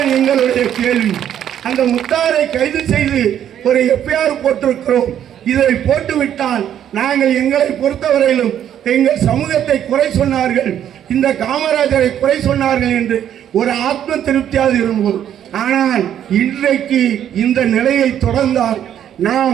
எங்களுடைய கேள்வி. அந்த முத்தாரை கைது செய்து ஒரு எஃப்ஐஆர் போட்டிருக்கிறோம். இதை போட்டுவிட்டால் நாங்கள் எங்களை பொறுத்தவரையிலும் எங்கள் சமூகத்தை குறை சொன்னார்கள், இந்த காமராஜரை குறை சொன்னார்கள் என்று ஒரு ஆத்ம திருப்தியாக இருந்தோம். ஆனால் இன்றைக்கு இந்த நிலையை தொடர்ந்தால்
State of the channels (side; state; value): left; quieter; 10.1 dB